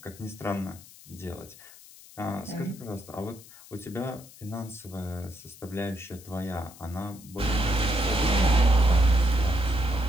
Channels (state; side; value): noise; left; hiss, 20 dB below the sound